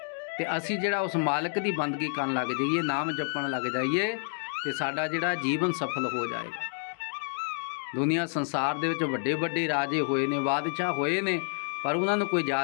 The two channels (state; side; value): silent; right; 59 dB below the other